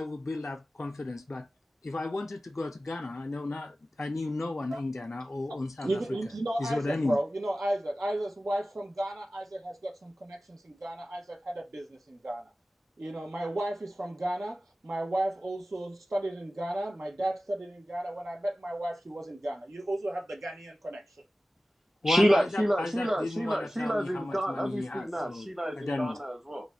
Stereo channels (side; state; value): both; normal; correlation 0.96